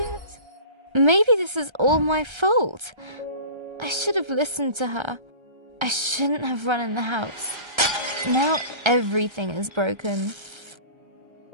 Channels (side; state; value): left; late; 1.3 ms